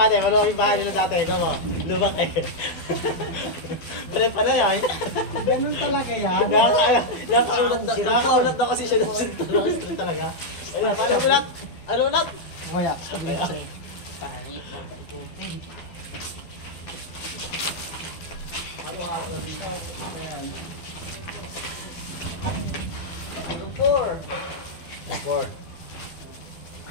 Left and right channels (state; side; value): late; right; 12 ms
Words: maluwag yung bahay nila dati, ikaw mo, lubak eh. Pala pala yan. Ganun talaga yan. Nakakaunat na kasi siya ng street talaga. Ayun, paano ulat? Ano ulat? Kaya, sabi ko sa'yo. Pangit mo ba ikutin? Four.